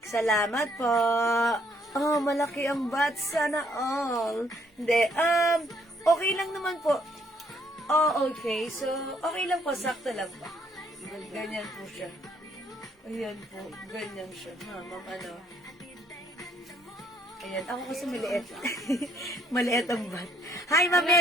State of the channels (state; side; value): normal; both; correlation 0.67